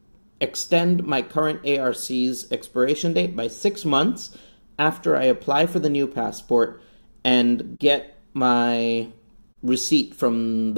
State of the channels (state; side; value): inverted; both; correlation -1.00